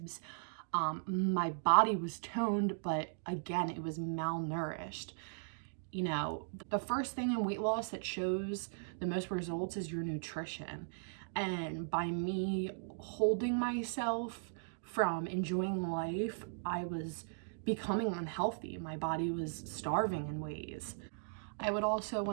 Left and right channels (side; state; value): left; silent; digital silence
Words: My body was toned, but again, it was malnourished. The first thing in weight loss that shows the most results is your nutrition. And by me holding myself from enjoying life, I was becoming unhealthy. My body was starving in ways. I would also,